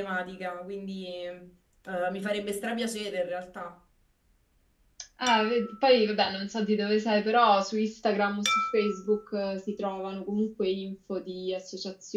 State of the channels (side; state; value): both; identical; correlation 1.00